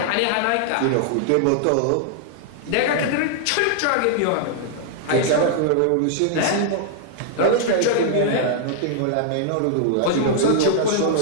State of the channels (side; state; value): both; different; correlation -0.01